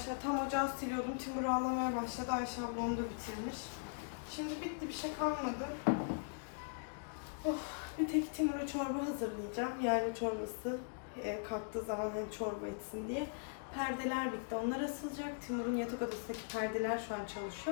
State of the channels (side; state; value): right; silent; digital silence